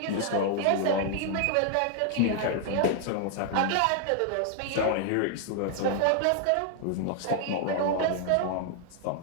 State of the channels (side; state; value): both; different; correlation 0.00